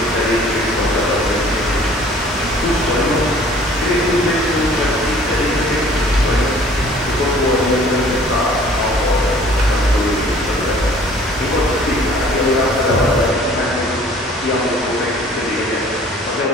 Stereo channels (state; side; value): normal; both; correlation 0.52